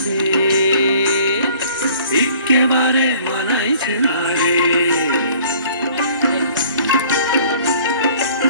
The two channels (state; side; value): inverted; both; correlation -0.53